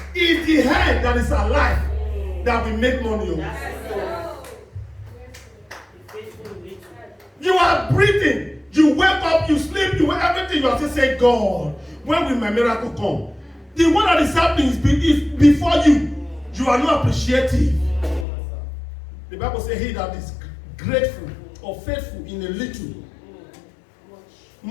It's the head that is alive that will make money. You are breathing. You wake up, you sleep, you everything. You have to say, God, when will my miracle come? The one that is happening is before you. You are not appreciative. The Bible says, he that is grateful or faithful in a little,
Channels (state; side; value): drops out; right; at 18.2 s